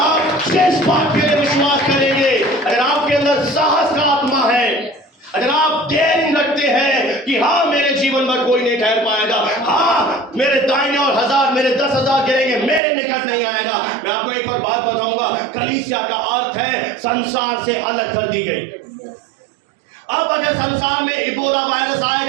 जिस बात के लिए विश्वास करेंगे अगर आप डेयरिंग रखते हैं कि हाँ मेरे जीवन में कोई नहीं ठहर पाएगा, हाँ मेरे दाहिने और 1000 मेरे 10,000 गिरेंगे, मेरे निकट नहीं आएगा। मैं आपको एक और बात बताऊंगा, कलीसिया का अर्थ है संसार से अलग कर दी गई। अब अगर संसार में इबोला वायरस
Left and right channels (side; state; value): left; drops out; at 12.8 s